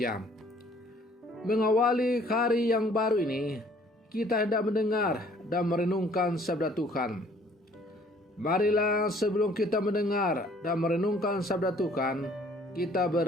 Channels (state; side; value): normal; both; correlation 0.58